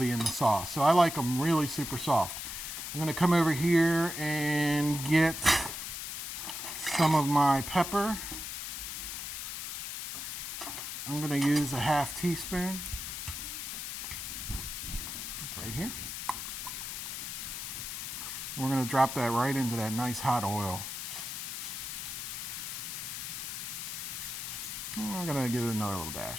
in the sauce. So I like them really super soft. I'm going to come over here and get some of my pepper. I'm going to use a 1/2 teaspoon. It's right here. We're going to drop that right into that nice hot oil. I'm going to give it another little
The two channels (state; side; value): noise; left; hiss, 5 dB below the sound